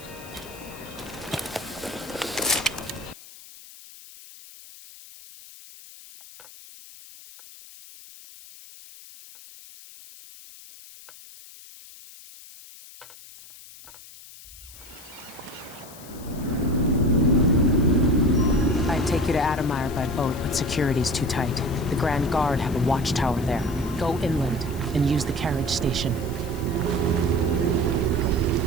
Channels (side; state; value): left; noise; hiss, 18 dB below the sound